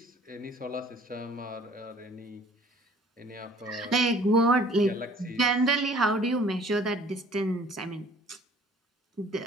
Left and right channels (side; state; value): both; normal; correlation 0.52